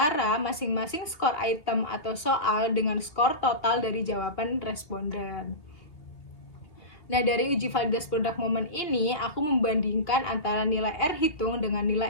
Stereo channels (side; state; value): right; late; 2.9 ms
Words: masing-masing skor item atau soal dengan skor total dari jawaban responden. Nah, dari uji validitas produk momen ini, aku membandingkan antara nilai R hitung dengan